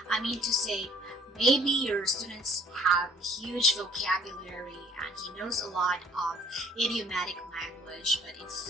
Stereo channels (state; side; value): normal; both; correlation 0.58